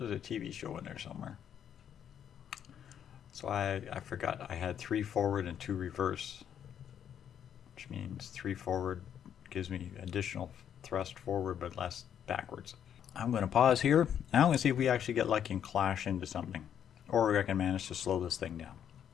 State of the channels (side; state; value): right; quieter; 9.1 dB